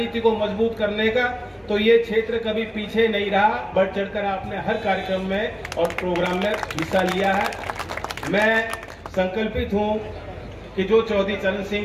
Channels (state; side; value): identical; both; correlation 1.00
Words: को मजबूत करने का, तो ये क्षेत्र कभी पीछे नहीं रहा। बढ़ चढ़कर आपने हर कार्यक्रम में और प्रोग्राम में हिस्सा लिया है। मैं संकल्पित हूं कि जो चौधरी चरण सिंह